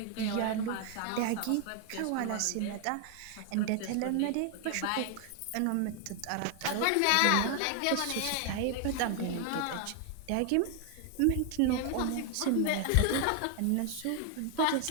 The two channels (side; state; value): both; different; correlation 0.00